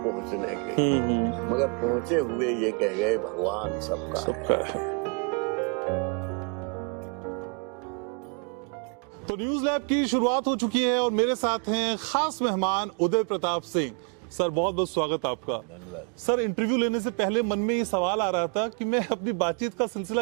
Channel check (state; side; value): quieter; left; 36.5 dB